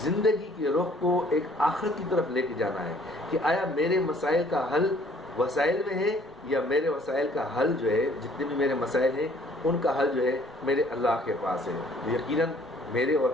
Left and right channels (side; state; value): both; normal; correlation 0.59